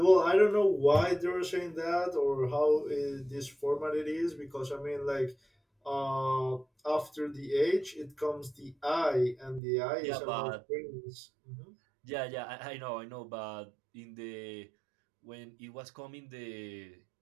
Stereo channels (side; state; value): left; drops out; at 9.6 s